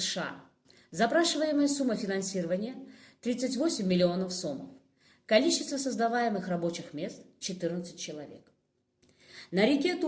Запрашиваемая сумма финансирования – 38 миллионов сомов. Количество создаваемых рабочих мест – 14 человек. На реке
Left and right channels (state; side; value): identical; both; correlation 1.00